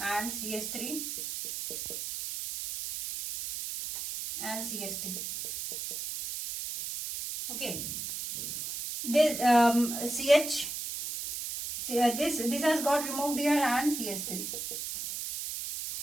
and CS3 and CS3. Okay, this CH, this has got removed here and CS3.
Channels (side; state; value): right; noise; hiss, 5 dB below the sound